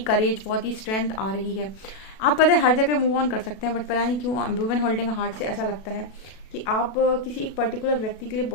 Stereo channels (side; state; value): right; late; 37 ms